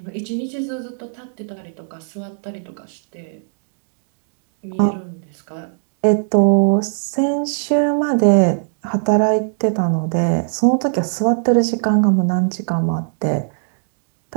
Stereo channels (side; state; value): left; silent; digital silence